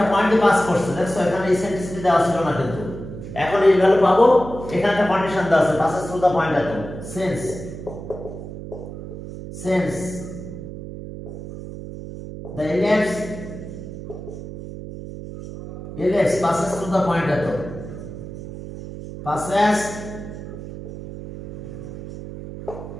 পয়েন্টে পাস করছে দেখছো এখানে ইসেন্ট্রিসিটি দেওয়া ছিল না কিন্তু এখন এই ভ্যালু পাবো এখানে একটা কন্ডিশন দেওয়া আছে পাসেস থ্রু দা পয়েন্ট এত since the ellipse passes through the point এত passes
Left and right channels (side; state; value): right; noise; hum, 10 dB below the sound